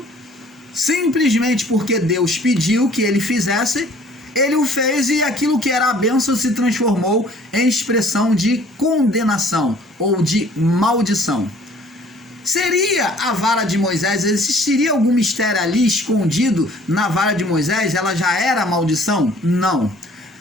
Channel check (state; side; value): normal; both; correlation 0.55